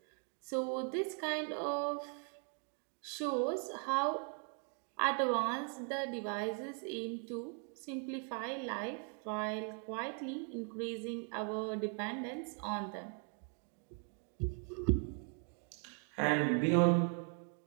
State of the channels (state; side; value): quieter; left; 39.4 dB